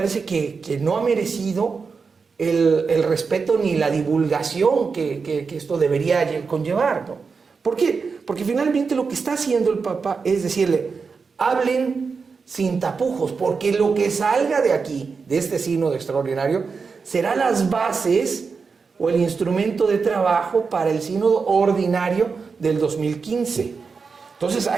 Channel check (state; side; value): quieter; left; 5.1 dB